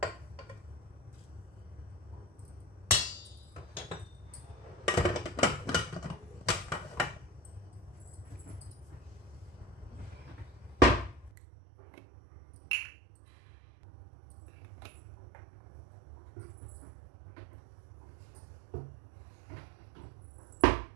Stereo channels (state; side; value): drops out; left; at 11.3 s